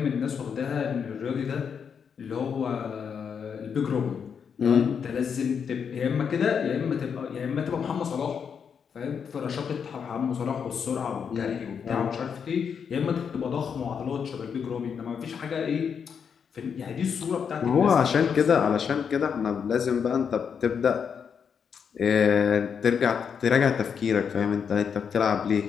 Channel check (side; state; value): right; quieter; 6.9 dB